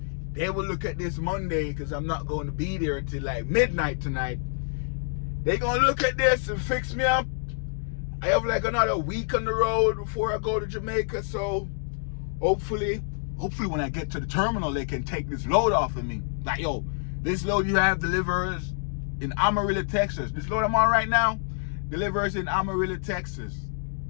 they will look at this Monday because I'm not going to be there until like midnight tonight. They gonna look at this and fix me up. I have like another week on the road before I go to Jamaica, so hopefully when I get to the terminal, they can take this load off of me. Like, yo, this load you have delivers in Amarillo, Texas. This load I'm on right now delivers in Amarillo, Texas.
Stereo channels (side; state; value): right; silent; digital silence